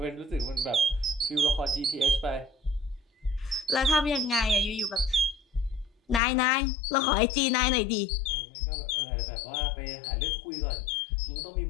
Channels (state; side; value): drops out; right; at 6.2 s